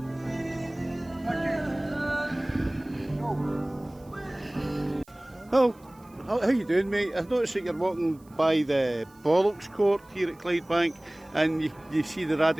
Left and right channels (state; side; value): noise; right; hiss, 30 dB below the sound